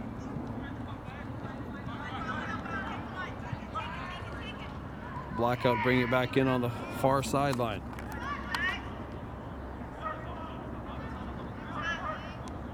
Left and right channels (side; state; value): both; identical; correlation 1.00